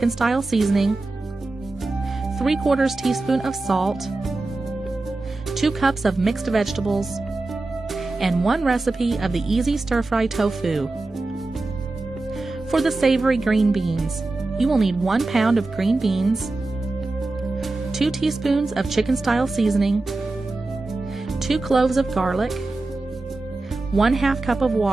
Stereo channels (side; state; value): left; quieter; 3.2 dB